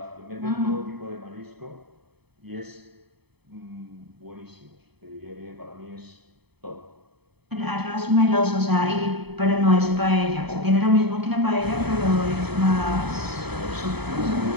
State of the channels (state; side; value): late; left; 0.98 ms